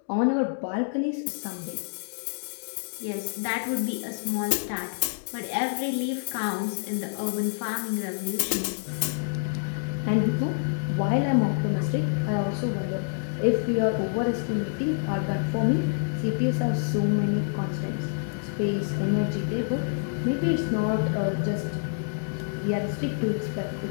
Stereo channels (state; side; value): silent; right; digital silence